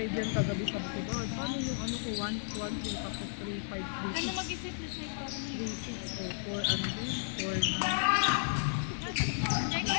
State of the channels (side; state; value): right; silent; digital silence